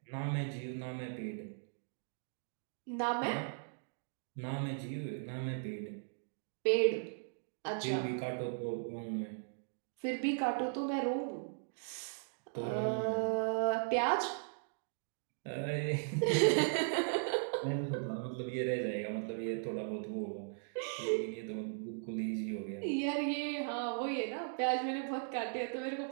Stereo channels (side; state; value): left; silent; digital silence